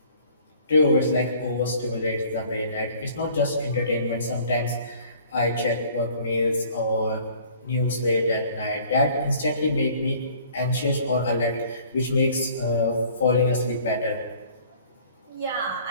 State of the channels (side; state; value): both; inverted; correlation -0.53